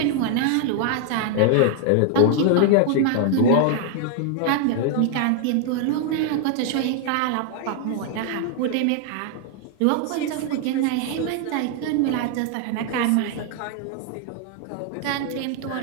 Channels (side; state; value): both; different; correlation 0.00